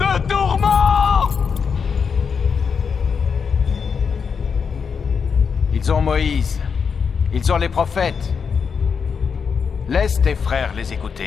tourment. Ils ont Moïse. Ils ont les prophètes. Laisse tes frères les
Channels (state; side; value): quieter; right; 6.1 dB